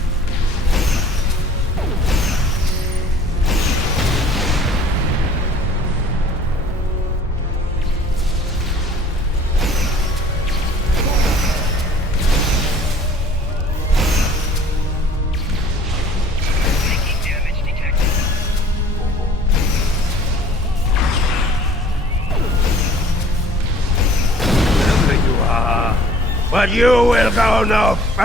But you will go no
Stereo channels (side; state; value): both; normal; correlation 0.51